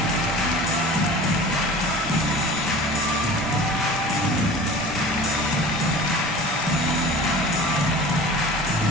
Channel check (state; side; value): normal; both; correlation 0.40